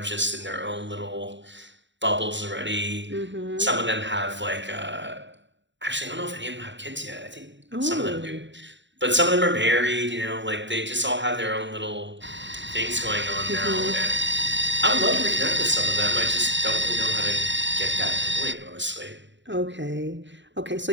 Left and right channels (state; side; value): late; left; 0.53 ms